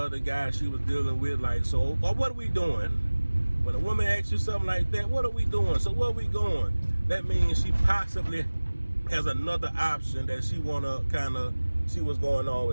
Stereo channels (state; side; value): inverted; both; correlation -1.00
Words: guy she was dealing with, like, so, or what are we doing? When a woman asks you something like that, what are we doing? So where are we going? That means she possibly has another option that she want to kind of see what's going on